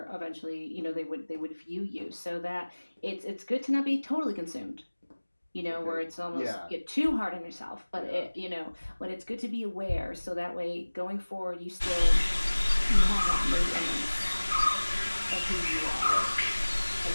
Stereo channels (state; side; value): inverted; both; correlation -1.00